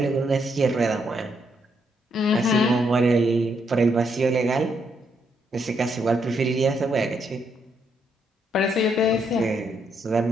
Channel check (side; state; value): both; normal; correlation 0.76